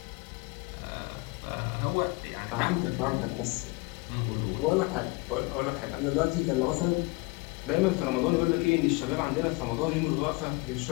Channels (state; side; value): quieter; right; 25.7 dB